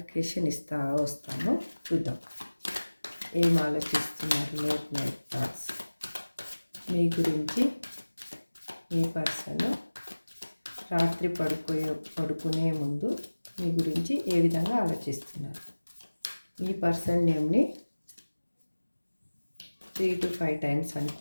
ఇస్తా వస్తాను. చూద్దాం ఏం ఆలోచిస్తున్నారు లేట్ నైట్ థాట్స్ మీ గురించి. మీ పర్సన్ రాత్రి పడుకునే ముందు మీ గురించి ఏ విధంగా ఆలోచిస్తున్నారు. మీ పర్సన్ నేమ్ని 3 to 5 టైమ్స్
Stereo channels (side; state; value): both; inverted; correlation -1.00